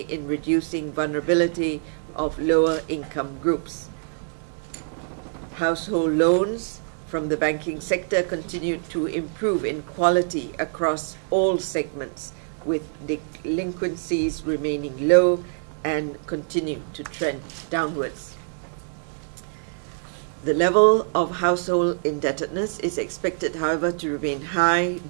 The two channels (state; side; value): silent; left; digital silence